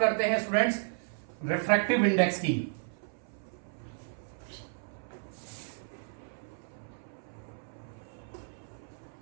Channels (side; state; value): left; silent; 56 dB below the other